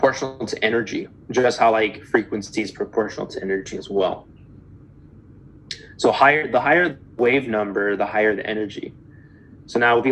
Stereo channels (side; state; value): both; identical; correlation 1.00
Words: to energy, just how like frequency is proportional to energy as well. So the higher the wave number, the higher the energy. So now if we